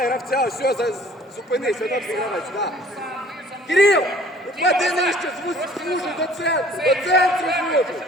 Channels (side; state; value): both; normal; correlation 0.53